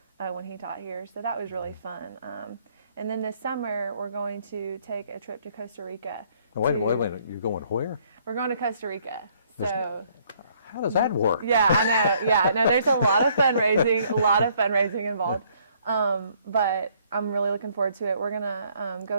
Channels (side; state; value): both; inverted; correlation -0.65